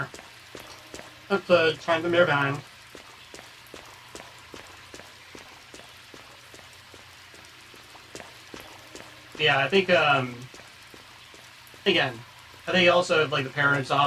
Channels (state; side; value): identical; both; correlation 1.00